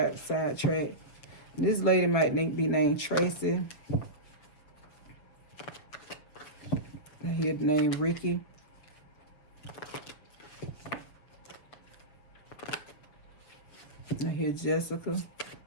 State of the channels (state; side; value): late; right; 6.9 ms